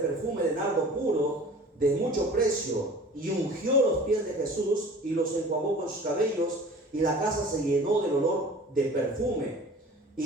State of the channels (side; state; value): both; normal; correlation 0.44